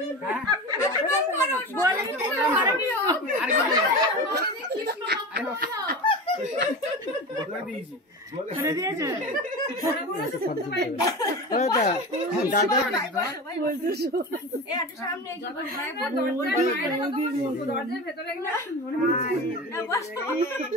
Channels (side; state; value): both; normal; correlation 0.28